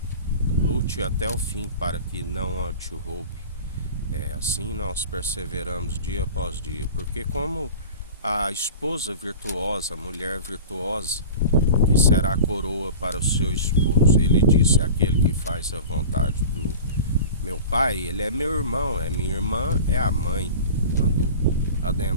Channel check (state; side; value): inverted; both; correlation -0.36